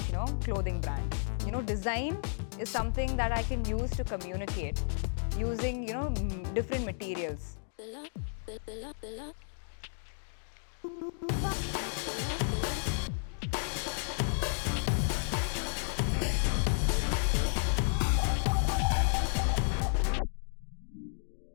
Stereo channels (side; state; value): right; silent; digital silence